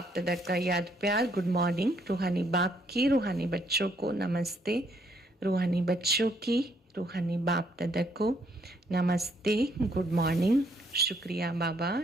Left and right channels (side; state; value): both; normal; correlation 0.69